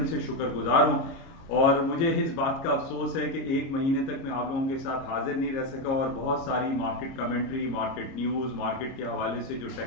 से शुक्रगुजार हूँ। और मुझे इस बात का अफसोस है कि एक महीने तक मैं आप लोगों के साथ हाजिर नहीं रह सका और बहुत सारी market commentary, market news, market के हवाले से जो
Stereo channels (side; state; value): right; late; 30 ms